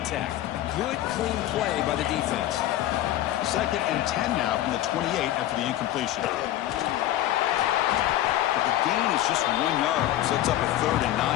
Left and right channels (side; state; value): right; quieter; 13.6 dB